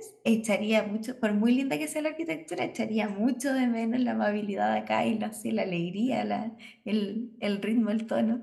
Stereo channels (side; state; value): both; identical; correlation 1.00